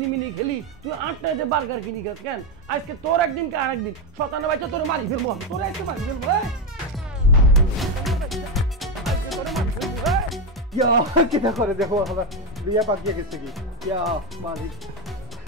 খেলি তুই 8 টাকাতে বার্গার কিনি খাস কেন আজকে তোর একদিন কে আরেকদিন শতানা বাইচা তোর মারি ফেলবো তোর আজকে মারি ফেলবো ইয়া কিটা করে দেখো আমার বিয়া পাকিয়ে গেছে কি ইয়া মালিক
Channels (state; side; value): normal; both; correlation 0.09